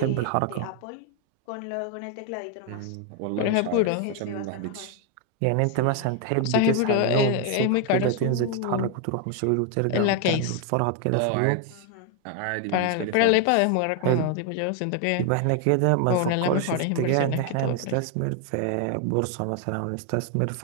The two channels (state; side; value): different; both; correlation 0.01